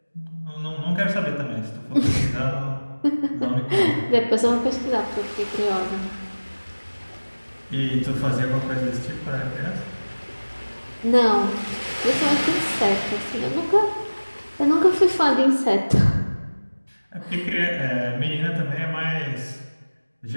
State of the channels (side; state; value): both; inverted; correlation -1.00